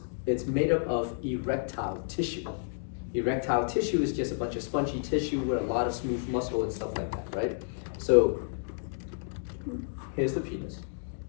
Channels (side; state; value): right; silent; digital silence